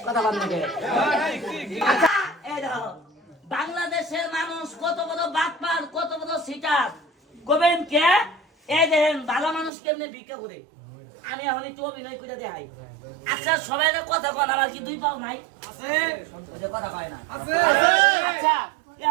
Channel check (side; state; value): left; drops out; at 9.7 s